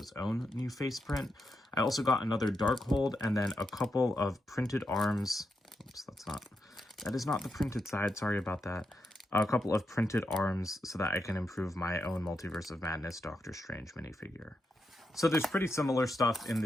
own new face print. I also got another Darkhold and then a couple of printed arms. Oops, that is not the printed side. Sorry about that. A couple of printed arms so that I can improve my own Multiverse of Madness Doctor Strange minifigure. So there's pretty similar stuff in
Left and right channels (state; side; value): normal; both; correlation 0.85